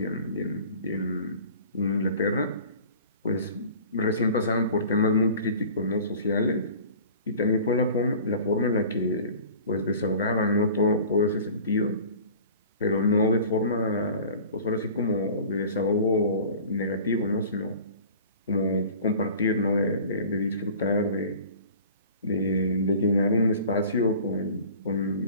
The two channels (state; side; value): inverted; both; correlation -0.44